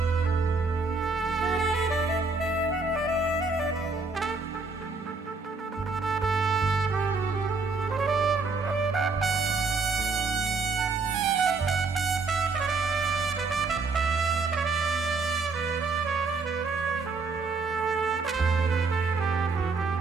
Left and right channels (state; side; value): quieter; left; 4.1 dB